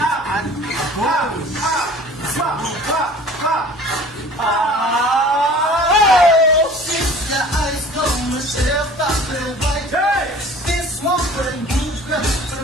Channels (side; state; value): both; normal; correlation 0.46